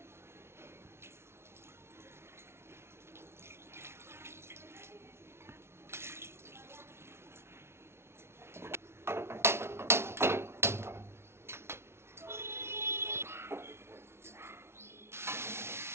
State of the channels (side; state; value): left; late; 0.12 ms